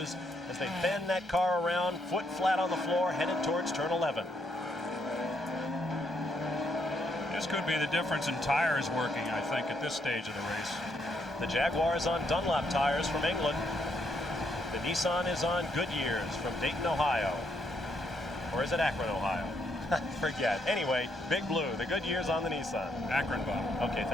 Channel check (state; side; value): normal; both; correlation 0.75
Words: as they bend that car around, foot flat on the floor, headed towards turn 11. This could be the difference in tires working, I think, at this stage of the race. The Jaguar is on Dunlop tires from England. The Nissan is on Goodyears from Dayton, Ohio. Or is it Akron, Ohio? Forget. Anyway, Big Blue, the Goodyears on the Nissan. Akron, Bob. Okay,